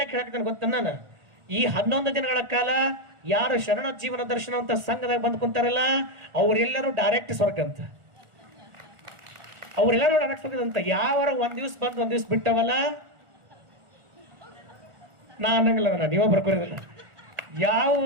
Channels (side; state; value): left; late; 1.4 ms